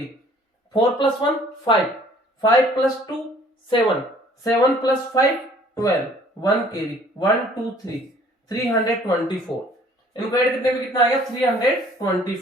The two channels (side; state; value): both; normal; correlation 0.56